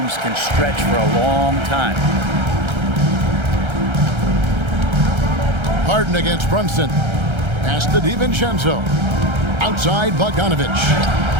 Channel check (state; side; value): late; left; 1.3 ms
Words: can stretch for a long time. Harden against Brunson. Pass to DiVincenzo. Outside Bogdanovich.